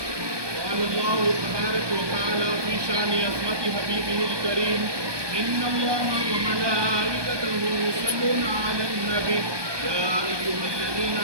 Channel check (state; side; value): late; left; 1.2 ms